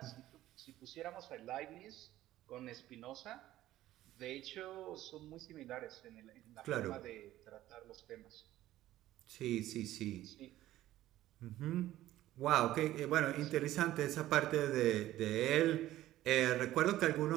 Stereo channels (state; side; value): quieter; left; 14.6 dB